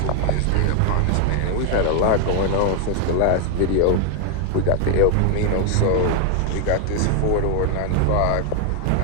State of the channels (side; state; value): both; different; correlation 0.00